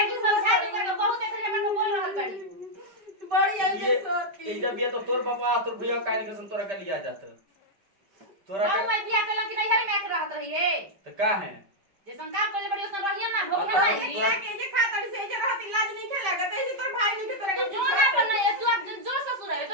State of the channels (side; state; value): left; late; 5.1 ms